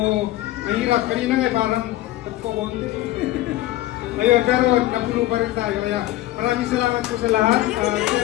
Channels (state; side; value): quieter; right; 15.7 dB